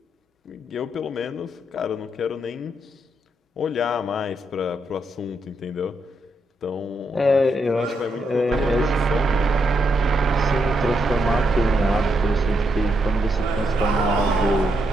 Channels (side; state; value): both; normal; correlation 0.80